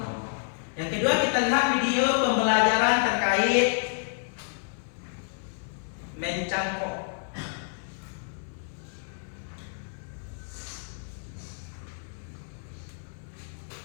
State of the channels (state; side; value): silent; right; 59 dB below the other